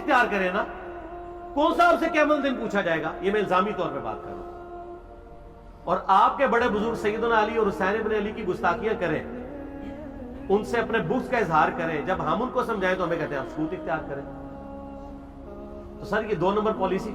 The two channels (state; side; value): identical; both; correlation 1.00